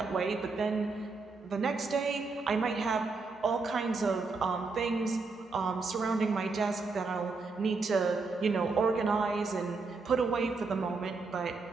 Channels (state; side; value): quieter; left; 4.1 dB